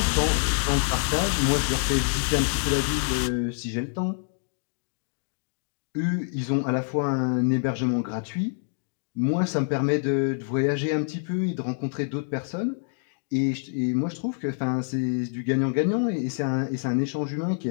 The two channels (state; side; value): silent; right; digital silence